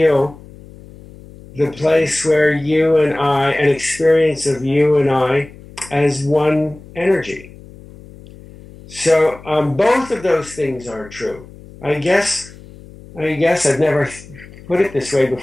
the place where you and I, an experience of you and I as one energy. So both of those things are true. I guess I've never put it this way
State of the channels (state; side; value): noise; left; hum, 20 dB below the sound